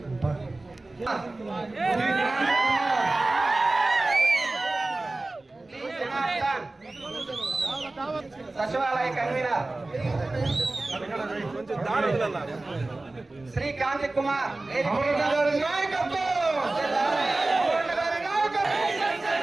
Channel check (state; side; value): quieter; left; 3.0 dB